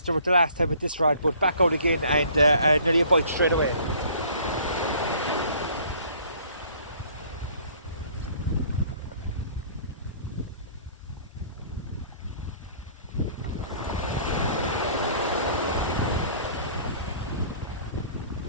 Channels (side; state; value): both; inverted; correlation -0.54